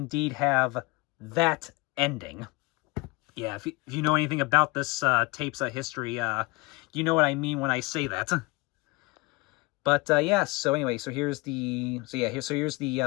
have that ending. Yeah, if you know anything about this tape's history, you know what I mean when I say that. But yeah, so anyway, so here's the here's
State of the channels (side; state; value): right; quieter; 24.7 dB